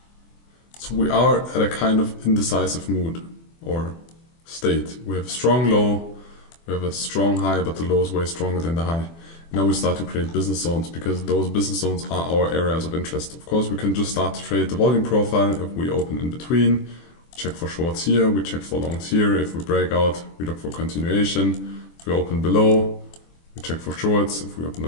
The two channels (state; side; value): late; right; 24 ms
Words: So we are at a kind of indecisive mood or state. We have a strong low, we have a strong high, but the low is way stronger than the high. Now we start to create business zones, because those business zones are our areas of interest. Of course, we can just start to trade the volume profile if we open in between. Check for shorts here, we check for longs here. If we break out, we look for continuation. If we open below, we check for shorts. If we open